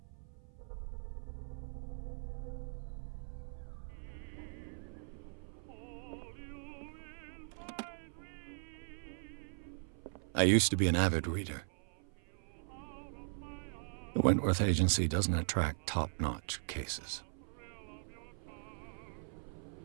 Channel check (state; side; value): silent; left; 51 dB below the other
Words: I used to be an avid reader. The Wentworth Agency doesn't attract top-notch cases.